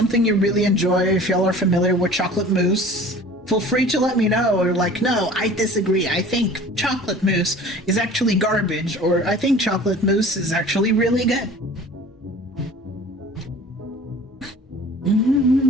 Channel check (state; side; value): normal; both; correlation 0.44